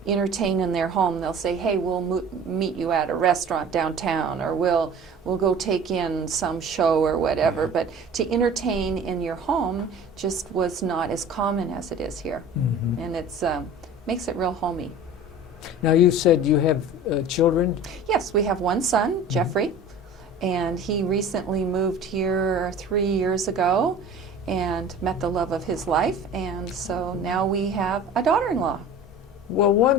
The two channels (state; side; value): normal; both; correlation 0.41